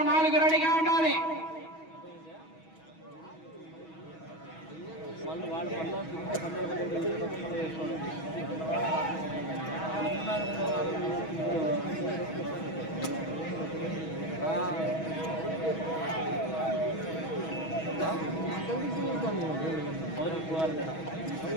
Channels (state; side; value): late; right; 6.2 ms